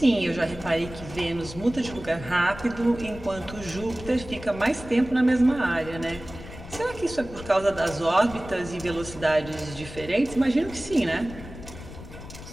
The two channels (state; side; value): noise; left; rumble, 14 dB below the sound